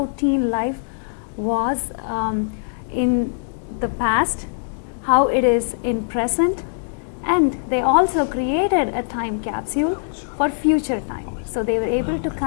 teen life was in the past, how it is in present, and they also created a time capsule for future time. So they were able to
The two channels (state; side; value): silent; right; digital silence